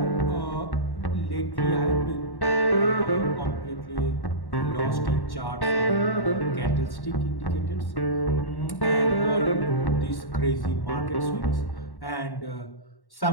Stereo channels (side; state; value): right; late; 1.1 ms